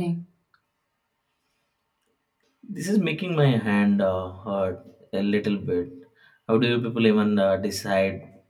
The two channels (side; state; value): both; identical; correlation 1.00